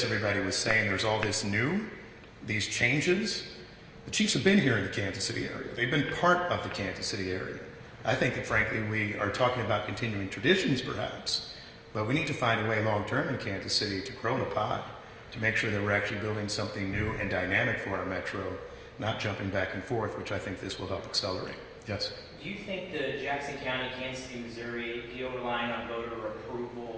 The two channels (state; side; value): identical; both; correlation 1.00